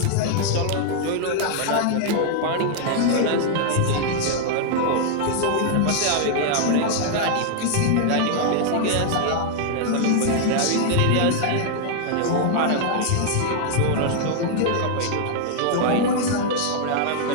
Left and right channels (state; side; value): different; both; correlation 0.00